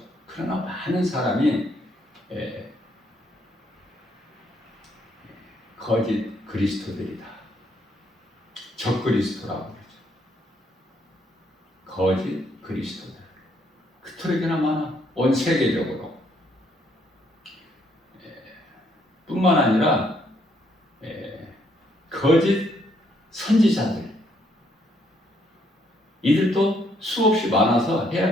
그러나 많은 사람이 거짓 그리스도들이다. 적그리스도라고 그러죠. 거짓 그리스도들. 그토록이나 많아. 온 세계적으로. 뿐만 아니라 거짓 선지자들. 이들도 수없이 많아서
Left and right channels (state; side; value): normal; both; correlation 0.71